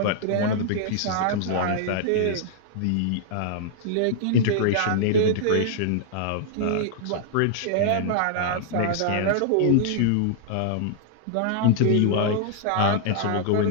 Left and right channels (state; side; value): different; both; correlation -0.01